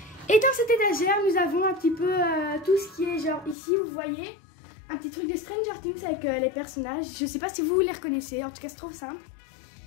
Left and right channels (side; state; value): right; drops out; at 3.6 s